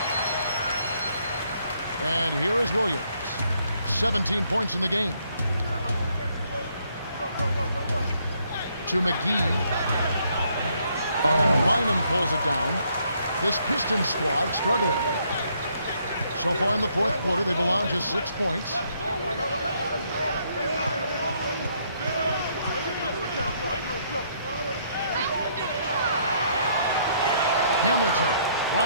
And here is Williams. 17 points in the game. To McGee. And Bynum pulls it down. This Pistons squad struggling. So far in the fourth quarter, they've allowed just 6 points. Hamilton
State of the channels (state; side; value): inverted; both; correlation -0.70